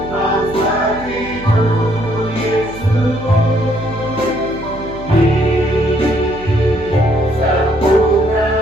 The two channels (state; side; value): noise; right; hum, 15 dB below the sound